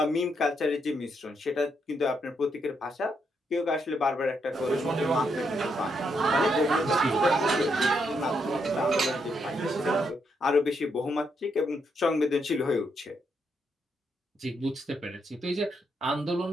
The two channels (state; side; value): normal; both; correlation 0.78